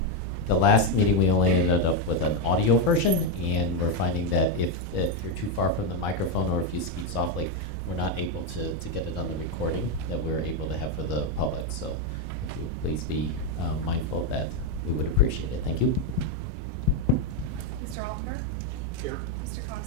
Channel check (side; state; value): both; normal; correlation 0.05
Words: meeting, we only ended up with an audio version, and we're finding that if you're too far from the microphone or if you speak softly, we're not able to get it on the recording that we're able to have for the public. So if you would please be mindful of that, we would appreciate it. Thank you. Mr. Altenberg? Here. Mr.